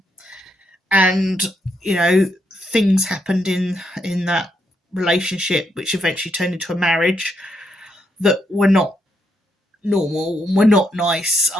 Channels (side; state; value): both; normal; correlation 0.78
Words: And things happened in that relationship, which eventually turned into a marriage, that were not normal and were not nice